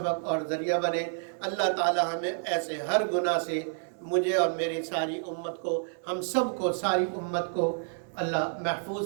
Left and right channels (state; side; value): silent; left; 58 dB below the other